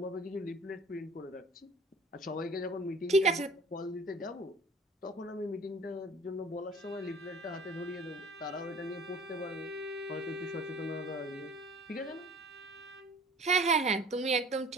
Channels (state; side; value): normal; both; correlation 0.48